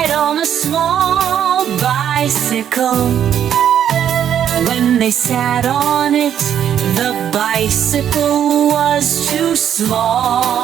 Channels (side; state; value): left; quieter; 9.5 dB